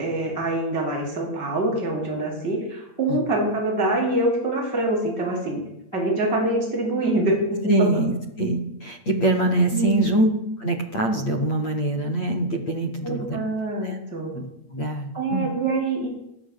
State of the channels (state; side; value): late; right; 8.7 ms